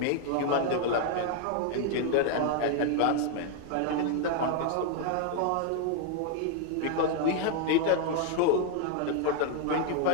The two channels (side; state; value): both; different; correlation 0.00